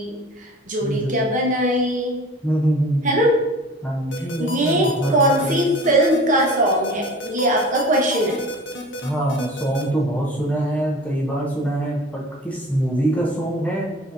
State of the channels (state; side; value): normal; both; correlation 0.40